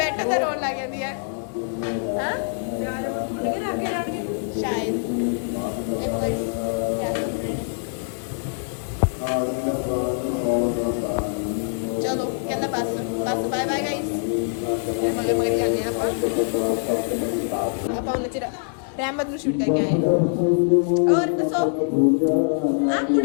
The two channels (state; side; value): silent; right; digital silence